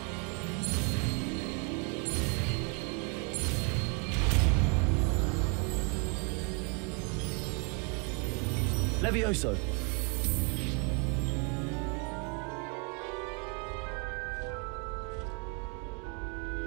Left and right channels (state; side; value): quieter; left; 35.6 dB